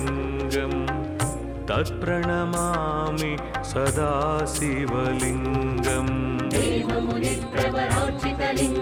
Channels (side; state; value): both; identical; correlation 1.00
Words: तत्प्रणमामि सदा शिवलिङ्गम्